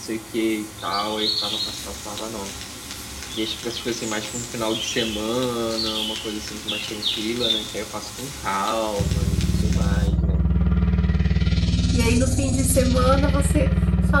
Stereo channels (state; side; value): identical; both; correlation 1.00